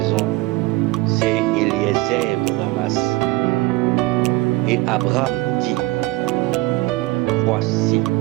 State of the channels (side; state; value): left; quieter; 20.2 dB